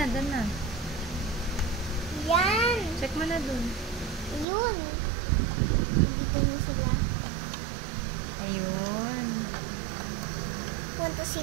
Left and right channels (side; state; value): left; drops out; at 4.5 s